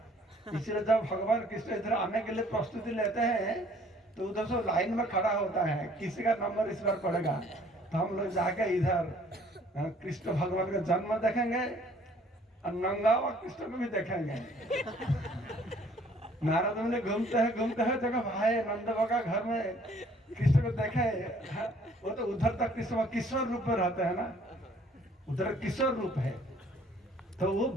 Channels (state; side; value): normal; both; correlation 0.58